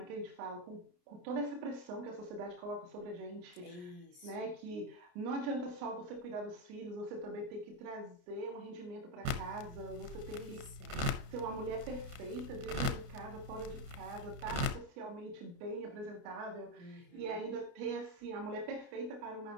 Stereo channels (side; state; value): left; late; 28 ms